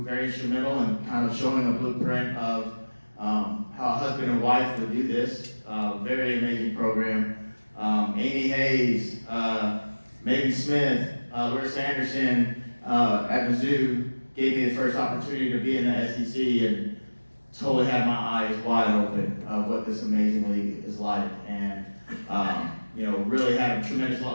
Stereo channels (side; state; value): both; inverted; correlation -1.00